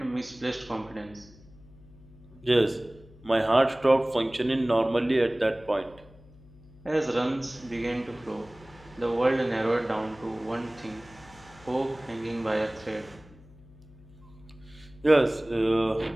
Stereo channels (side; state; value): left; noise; hum, 23 dB below the sound